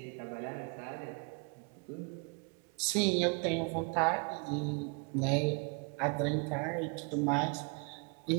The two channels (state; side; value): quieter; left; 35.7 dB